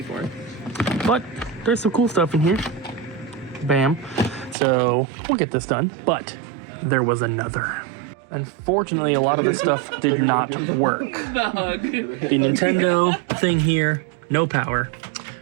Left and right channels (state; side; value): drops out; left; at 4.5 s